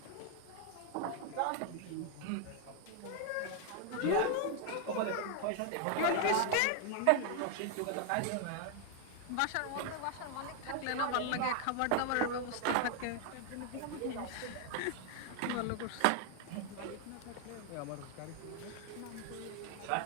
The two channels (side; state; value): both; different; correlation 0.00